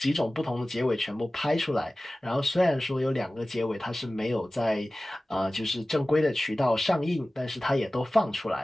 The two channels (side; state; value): both; normal; correlation 0.97